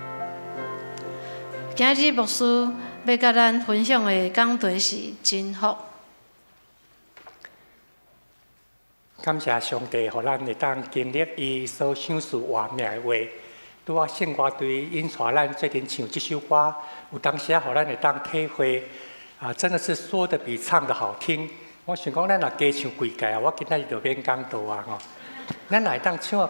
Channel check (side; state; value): both; inverted; correlation -1.00